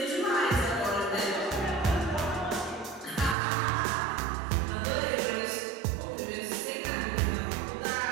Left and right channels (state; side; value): drops out; left; at 3.4 s